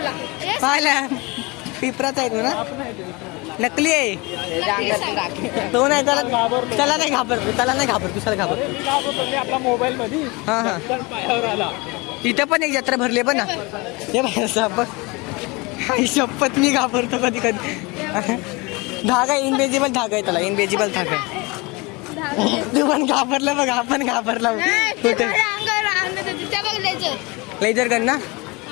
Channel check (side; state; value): right; quieter; 25.8 dB